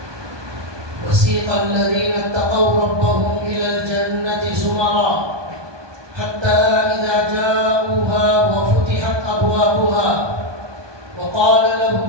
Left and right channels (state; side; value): late; left; 1.2 ms